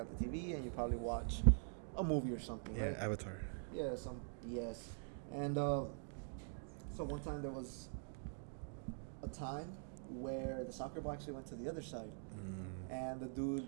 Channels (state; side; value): silent; left; digital silence